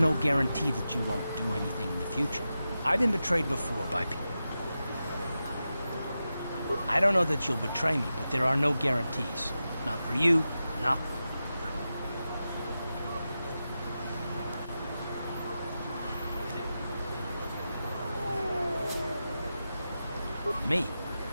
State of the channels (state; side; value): inverted; both; correlation -0.91